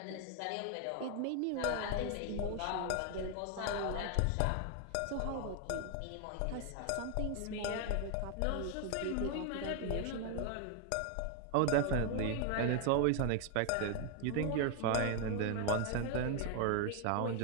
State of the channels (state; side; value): different; both; correlation 0.00